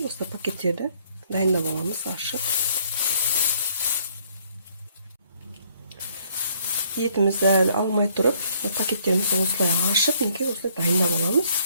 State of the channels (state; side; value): inverted; both; correlation -0.65